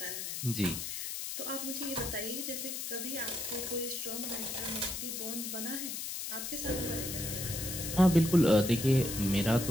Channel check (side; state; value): left; noise; hiss, 5 dB below the sound